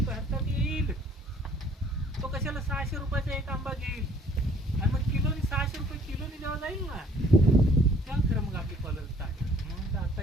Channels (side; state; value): both; normal; correlation 0.57